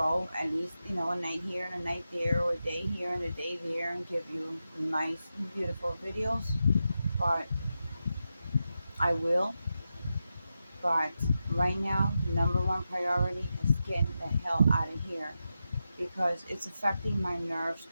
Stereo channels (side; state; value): both; inverted; correlation -0.89